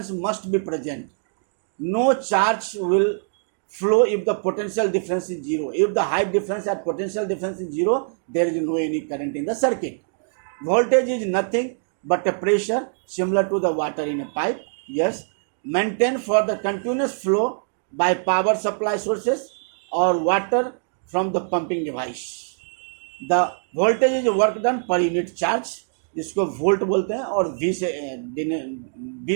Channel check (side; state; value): left; silent; digital silence